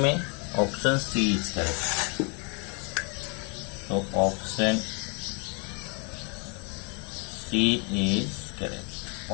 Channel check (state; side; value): quieter; right; 35.2 dB